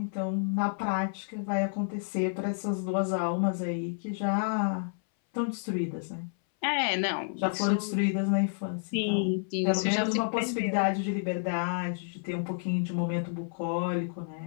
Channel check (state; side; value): silent; right; 58 dB below the other